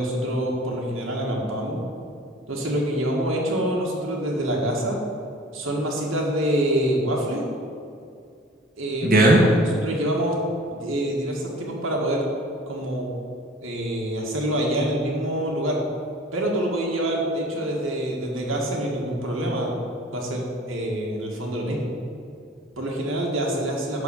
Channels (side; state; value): both; normal; correlation 0.46